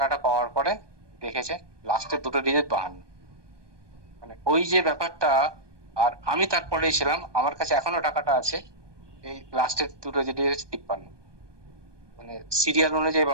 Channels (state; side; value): late; left; 1.2 ms